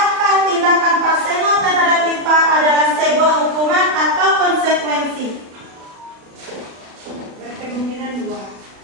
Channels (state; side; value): late; left; 37 ms